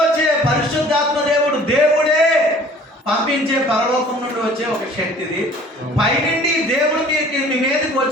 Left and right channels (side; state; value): both; normal; correlation 0.50